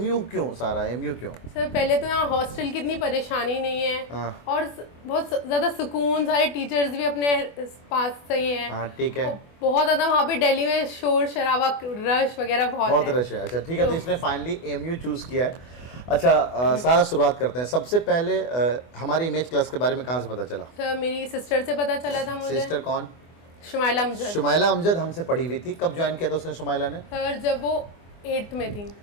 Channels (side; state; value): right; late; 24 ms